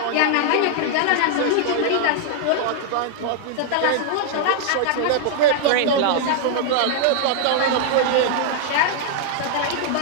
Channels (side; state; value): both; different; correlation -0.01